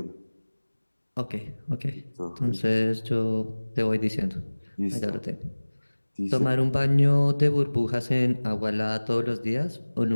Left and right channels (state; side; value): inverted; both; correlation -1.00